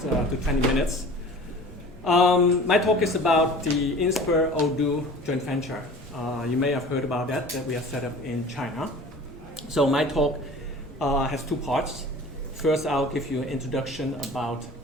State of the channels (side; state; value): both; normal; correlation 0.42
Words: to 20 minutes. My talk is about the Inspur Odoo joint venture. You may have heard about that we are set up in China. So my talk has two parts. First, I'll give you an introduction about